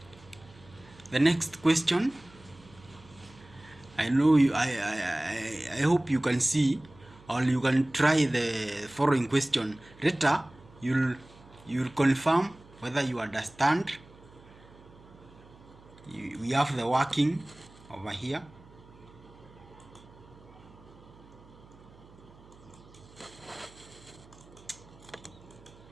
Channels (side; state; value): right; noise; hum, 23 dB below the sound